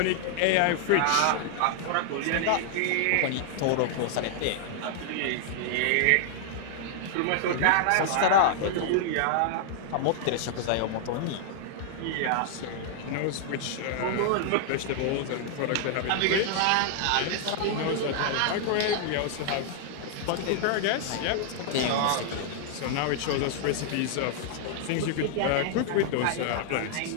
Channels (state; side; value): different; both; correlation -0.01